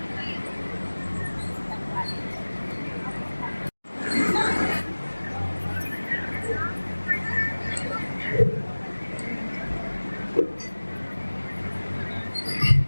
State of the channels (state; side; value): inverted; both; correlation -1.00